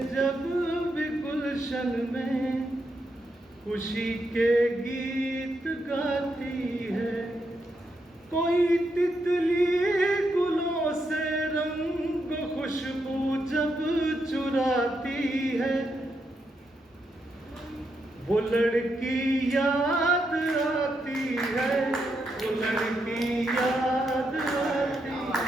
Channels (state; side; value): normal; both; correlation 0.82